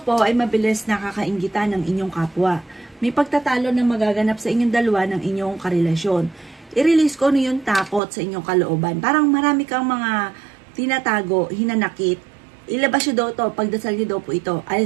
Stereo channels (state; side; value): drops out; left; at 8.0 s